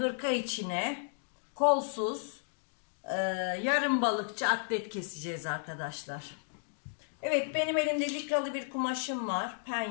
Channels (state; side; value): silent; right; digital silence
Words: içine kolsuz yarım balıkçı atlet keseceğiz arkadaşlar. Evet, benim elimde likralı bir kumaşım var,